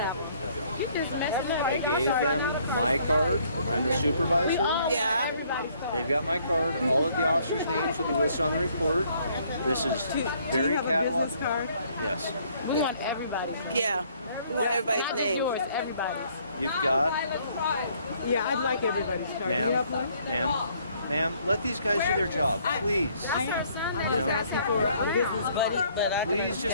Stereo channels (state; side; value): inverted; both; correlation -0.64